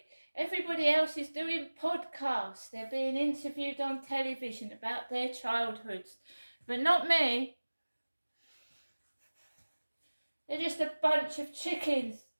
Everybody else is doing podcasts. They're being interviewed on television about their childhoods. But not me. They're just a bunch of chickens.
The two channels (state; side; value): inverted; both; correlation -1.00